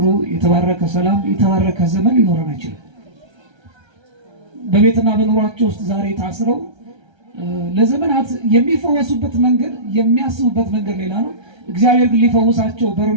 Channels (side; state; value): left; late; 1.3 ms